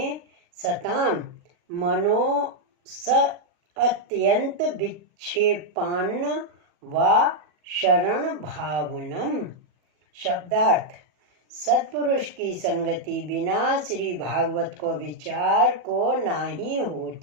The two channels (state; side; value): late; left; 40 ms